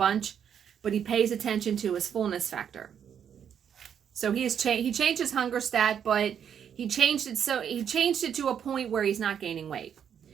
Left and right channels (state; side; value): quieter; left; 8.4 dB